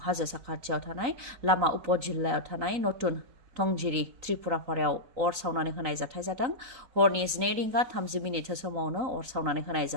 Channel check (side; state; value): left; late; 3.9 ms